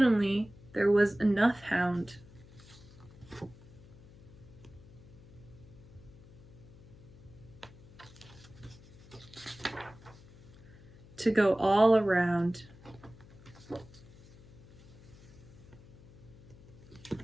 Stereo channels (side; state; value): left; noise; hum, 21 dB below the sound